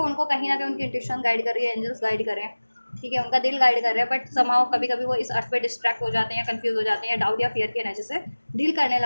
उनको कहीं ना कहीं उनकी इंट्यूशन गाइड कर रही है, एंजल्स गाइड कर रहे हैं, ठीक है, उनका दिल गाइड कर रहा है, बट समाओ कभी कभी वो इस अर्थ पे डिस्ट्रैक्ट हो जाते हैं या कंफ्यूज हो जाते हैं, या डाउट या फियर की एनर्जी से डील करने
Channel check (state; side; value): inverted; both; correlation -1.00